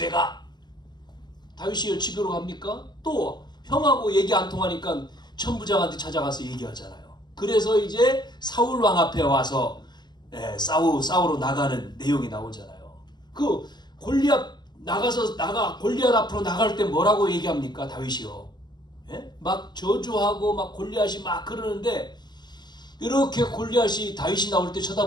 가. 다윗이 집으로 갑니까? 또 형하고 얘기 안 통하니까 천부장한테 찾아가서 얘기하잖아요. 그래서 이제 사울 왕 앞에 와서 싸우러 나가는 내용이 나오잖아요. 그 골리앗 골리앗 앞으로 나갈 때 뭐라고 얘기합니까? 다윗이요. 막 저주하고 막 골리앗이 막 그러는데 이렇게 골리앗이 다윗이 나올 때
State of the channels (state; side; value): late; right; 0.21 ms